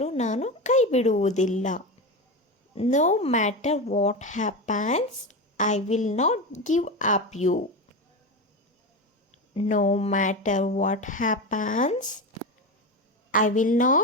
ನಾನು ಕೈ ಬಿಡುವುದಿಲ್ಲ. No matter what happens, I will not give up you. No matter what happens, I will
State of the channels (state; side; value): normal; both; correlation 0.20